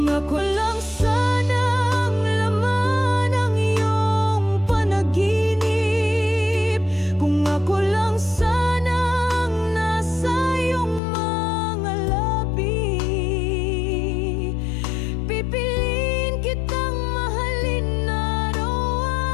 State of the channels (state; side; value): drops out; right; at 11.0 s